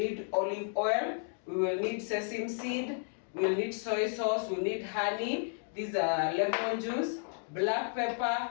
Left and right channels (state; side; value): silent; right; 56 dB below the other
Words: olive oil, we will need sesame seed, we'll need soy sauce, we'll need honey, these are lemon juice, black